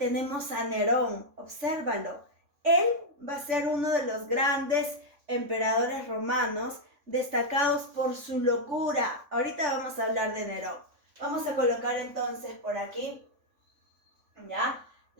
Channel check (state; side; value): late; left; 3.6 ms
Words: a Nerón. Obsérvalo. Él va a ser uno de los grandes emperadores romanos, destacados por su locura. Ahorita vamos a hablar de Nerón. Vamos a colocar entonces por aquí, ¿ya?,